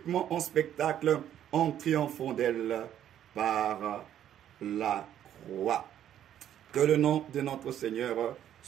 en spectacle en triomphant d'elles par la croix. Que le nom de notre Seigneur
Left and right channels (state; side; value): quieter; left; 10.7 dB